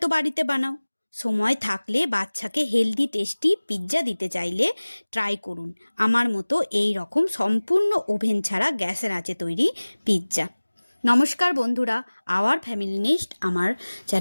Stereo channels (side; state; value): both; inverted; correlation -1.00